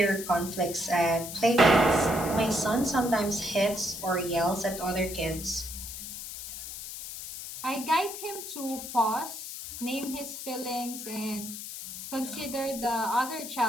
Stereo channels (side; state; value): left; noise; hiss, 9 dB below the sound